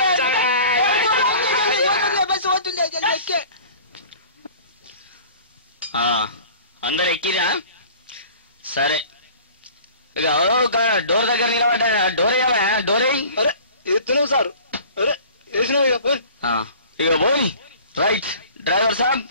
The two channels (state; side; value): inverted; both; correlation -0.45